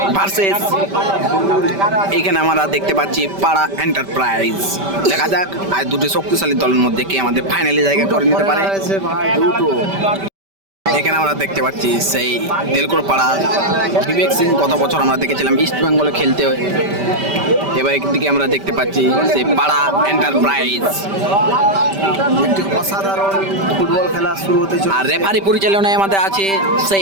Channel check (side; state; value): left; late; 5.1 ms